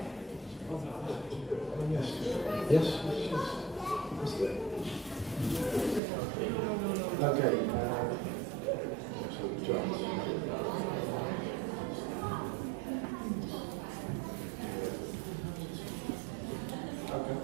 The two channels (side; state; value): left; drops out; at 6.0 s